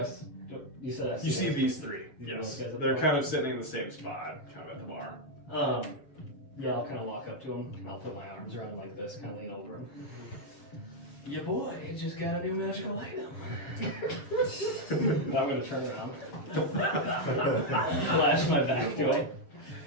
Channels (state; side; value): late; right; 7.1 ms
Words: You said I You see those? these 3. You Yes. those guys at the They're bar? kind of sitting in the same spot, kind of at the bar. Yeah, I'll kind of walk up to him and I'll put my arms around him like this, kind of lean over him. Yeah, boy, it just got a new magical item. And I'm gonna turn around, flash my back to him.